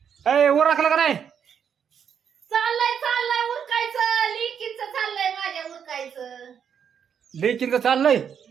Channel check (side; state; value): left; quieter; 7.8 dB